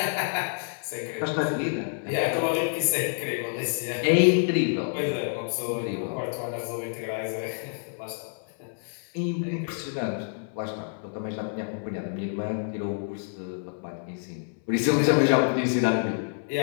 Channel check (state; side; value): silent; right; 59 dB below the other